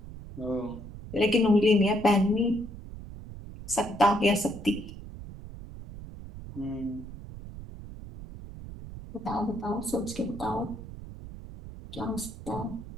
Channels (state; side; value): noise; right; rumble, 12 dB below the sound